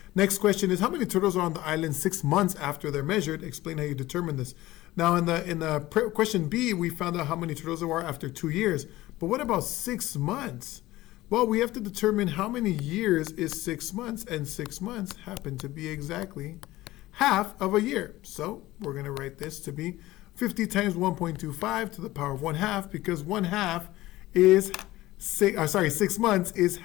Next question is how many turtles are on the island 6 months after they're measured? Explain how you determine this. Now in the question B, we found out how many turtles there are after 2 years. But what about 6 months? Well, we have to determine how many years is 6 months, and 6 months happen to be exactly half of a year. So we're going to write this to be 50 times 1.25 to the power of 1/2, because 1/2 is 6 months is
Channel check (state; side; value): quieter; right; 17.3 dB